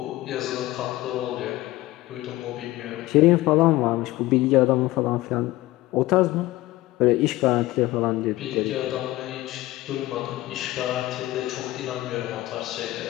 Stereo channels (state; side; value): quieter; right; 17.8 dB